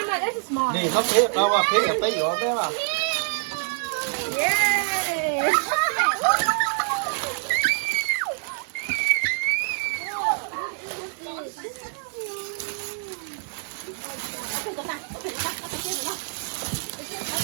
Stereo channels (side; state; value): left; silent; digital silence